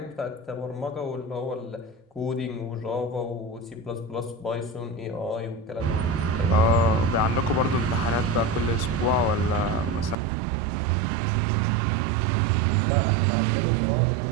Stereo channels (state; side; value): drops out; left; at 10.2 s